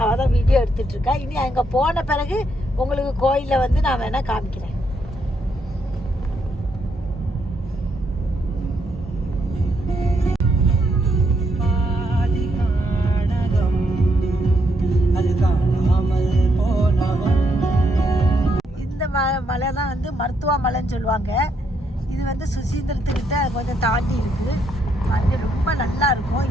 அவள் தான் வீடியோ எடுத்துகிட்ருக்கா. இனி அங்கே போன பிறகு உங்களுக்கு கோயிலில் வந்து நான் வேணால் காமிக்கிறேன். இந்த மலை தான் வந்து மருத்துவ மலைன்னு சொல்லுவாங்க. இது வந்து சுசீந்திரத்துக்கிட்ட கொஞ்சம் தாண்டி இருக்குது. அது ரொம்ப நல்லா இருக்கும்.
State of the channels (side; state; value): both; normal; correlation 0.76